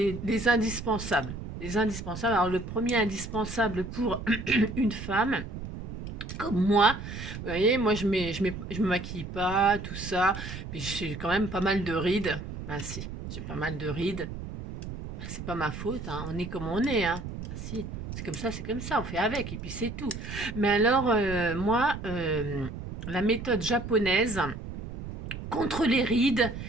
indispensables. Les indispensables. Alors, le premier indispensable pour une femme, comme moi, vous voyez, moi, je me maquille pas, tout ça. Mais j'ai quand même pas mal de rides. Ben, si, j'ai pas mal de rides. Ben, c'est pas ma faute, hein. On est comme on est, hein. Ben, si, c'est comme ça, on fait avec, et puis c'est tout. Mais alors, moi, la méthode japonaise contre les rides,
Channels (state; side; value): noise; right; rumble, 8 dB below the sound